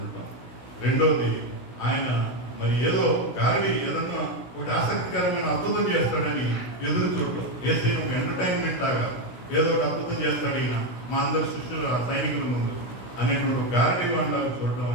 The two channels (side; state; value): right; late; 16 ms